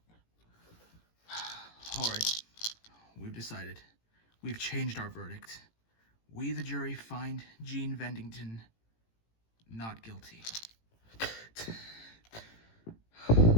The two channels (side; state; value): right; late; 18 ms